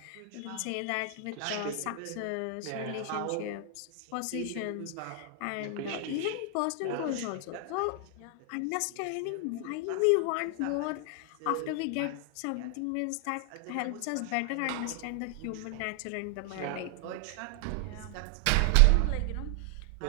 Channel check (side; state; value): both; different; correlation 0.00